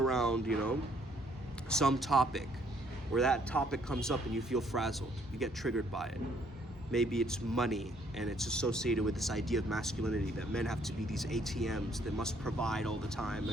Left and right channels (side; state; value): both; normal; correlation 0.66